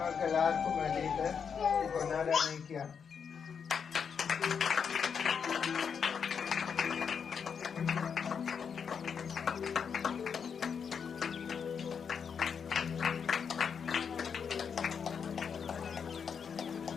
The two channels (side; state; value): right; quieter; 6.7 dB